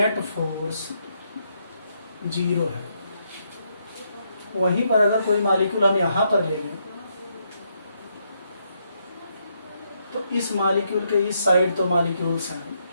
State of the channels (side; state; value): both; inverted; correlation -0.77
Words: फोर्स 0 है। वहीं पर अगर कोई मॉलिक्यूल हम यहाँ पर ले लें तो इस मॉलिक्यूल के इस साइड तो मॉलिक्यूल्स हैं,